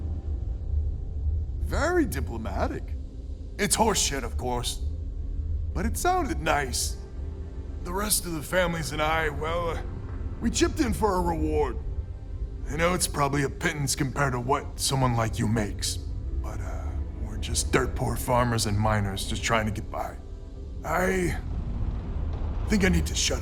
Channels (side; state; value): both; identical; correlation 1.00